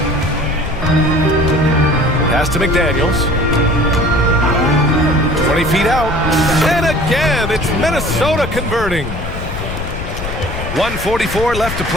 Pass to McDaniels. 20 feet out. And again, it's Minnesota converting. 1:44 left to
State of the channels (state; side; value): noise; left; rumble, 7 dB below the sound